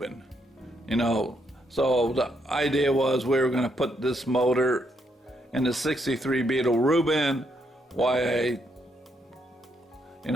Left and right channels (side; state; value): both; normal; correlation 0.76